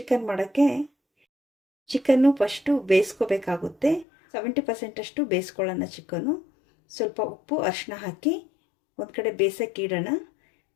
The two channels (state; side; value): drops out; right; at 4.0 s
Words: ಮಾಡೋಕ್ಕೆ ಚಿಕನ್ನು ಫಸ್ಟು ಬೇಯಿಸ್ಕೋಬೇಕಾಗುತ್ತೆ. 70% ಅಷ್ಟು ಬೇಯಿಸ್ಕೊಳ್ಳೋಣ ಚಿಕನ್ನು. ಸ್ವಲ್ಪ ಉಪ್ಪು ಅರಿಶಿನ ಹಾಕಿ ಒಂದು ಕಡೆ ಬೇಯಿಸೋಕ್ಕೆ ಇಡೋಣ.